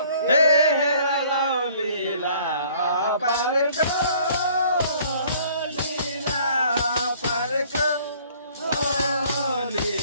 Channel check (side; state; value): both; inverted; correlation -0.56